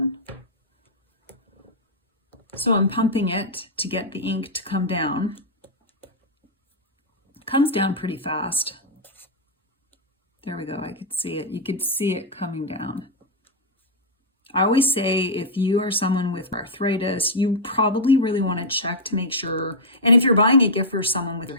So I'm pumping it to get the ink to come down. It comes down pretty fast. There we go, I could see it. You could see it coming down. I always say if you are someone with arthritis, you probably really want to check to make sure, and if you're buying a gift for someone with their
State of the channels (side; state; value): both; normal; correlation -0.06